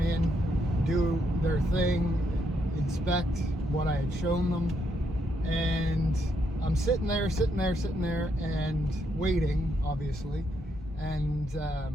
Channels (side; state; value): both; normal; correlation 0.77